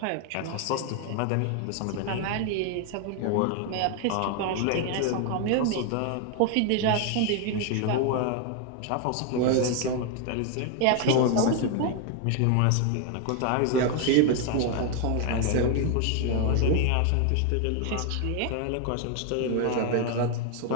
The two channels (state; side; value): different; both; correlation 0.01